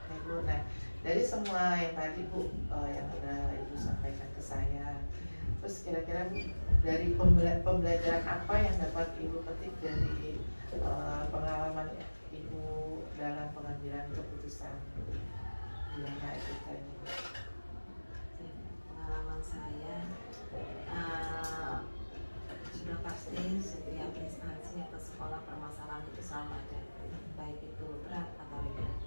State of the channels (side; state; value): both; inverted; correlation -1.00